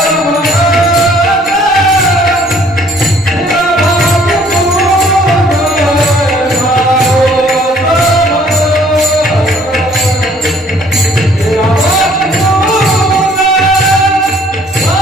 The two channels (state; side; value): normal; both; correlation 0.59